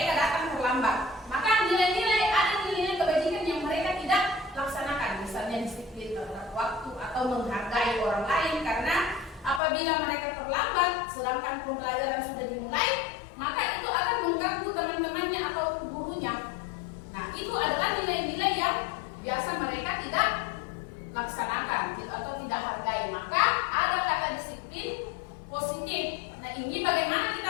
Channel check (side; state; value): right; drops out; at 9.6 s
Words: datang terlambat, maka ada nilai kebajikan yang mereka tidak laksanakan, misalnya disiplin terhadap waktu atau menghargai orang lain, karena apabila mereka terlambat sedangkan pembelajaran sudah dimulai, maka itu akan mengganggu teman-temannya atau gurunya. Nah, itu adalah nilai-nilai yang biasa mereka tidak laksanakan atau tidak hargai. Maka ada kata disiplin positif. Nah, ini bagaimana kita